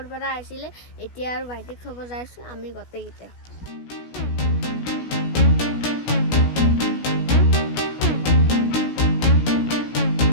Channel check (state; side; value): late; right; 16 ms